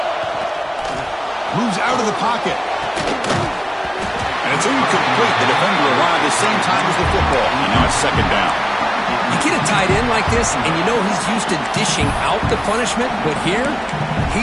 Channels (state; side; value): identical; both; correlation 1.00